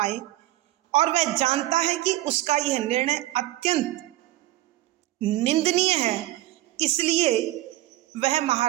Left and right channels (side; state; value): left; quieter; 16.2 dB